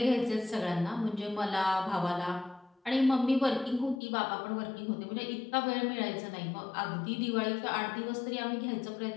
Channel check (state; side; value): drops out; right; at 4.0 s